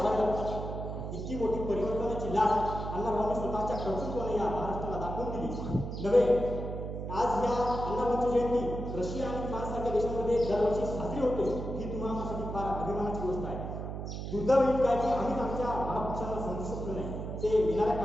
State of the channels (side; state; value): right; noise; hum, 6 dB below the sound